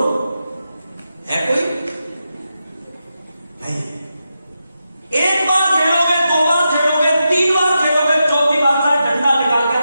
है कोई? नहीं। एक बार खेलोगे, दो बार खेलोगे, तीन बार खेलोगे, चौथी बार का डंडा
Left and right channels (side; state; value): both; inverted; correlation -0.88